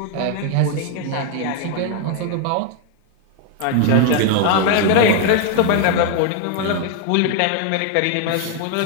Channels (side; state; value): both; different; correlation 0.01